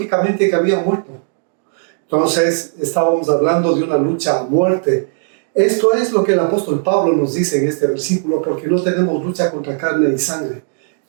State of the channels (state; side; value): silent; left; digital silence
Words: que habían muerto. Entonces, estábamos hablando de una lucha a muerte. Esto es lo que el apóstol Pablo nos dice en este versículo, porque no tenemos lucha contra carne y sangre.